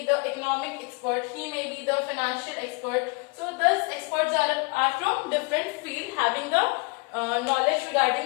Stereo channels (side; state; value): right; quieter; 30.6 dB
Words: the economic expert, he may be the financial expert. So these experts are from different field, having the knowledge